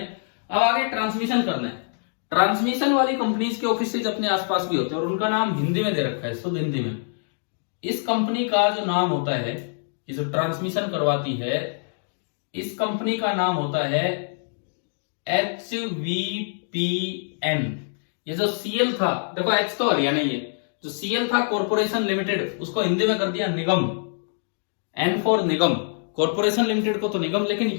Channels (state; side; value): silent; right; digital silence